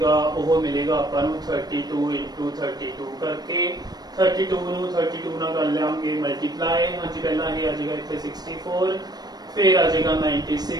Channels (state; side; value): late; left; 0.19 ms